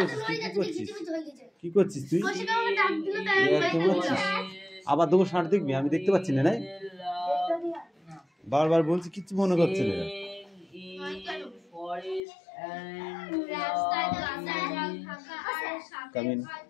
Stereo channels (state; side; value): drops out; right; at 12.2 s